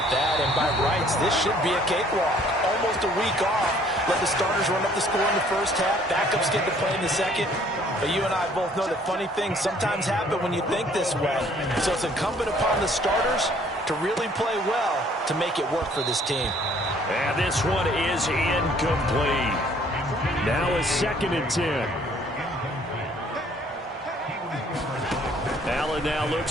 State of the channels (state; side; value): normal; both; correlation 0.59